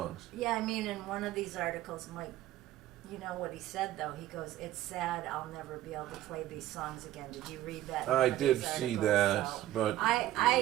Yeah, I mean, in one of these articles, Mike, you know what he said, though? He goes, it's sad I'll never be able to play these songs again. Did you read that? in I one of did these see articles? that, So but-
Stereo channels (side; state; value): left; quieter; 14.3 dB